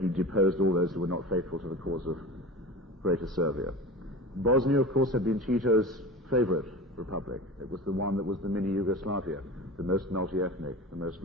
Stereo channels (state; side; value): normal; both; correlation 0.33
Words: deposed all those who were not faithful to the cause of Greater Serbia. Bosnia, of course, had been Tito's favorite republic. It was the one that was the mini Yugoslavia, the most multi-ethnic, the most